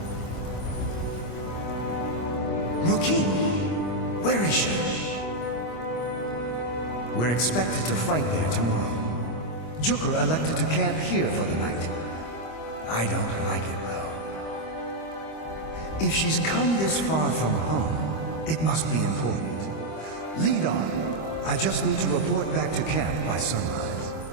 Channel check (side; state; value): right; late; 25 ms